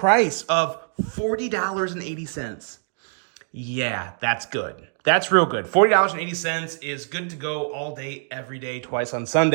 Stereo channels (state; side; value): silent; left; digital silence